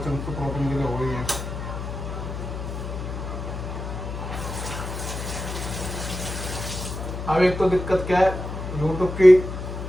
तो प्रोटीन के लिए हो ही है। अब एक तो दिक्कत क्या है, यूट्यूब की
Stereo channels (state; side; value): noise; left; hum, 6 dB below the sound